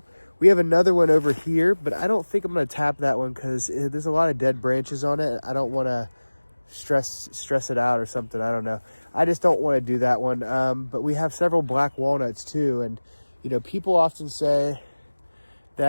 We have another one over here, but I don't think I'm going to tap that one because there's a lot of dead branches on it. I don't want to stress it out or something. I don't know. I just don't want to do that one. But we have several black walnuts too. And, people often say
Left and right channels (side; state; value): both; inverted; correlation -1.00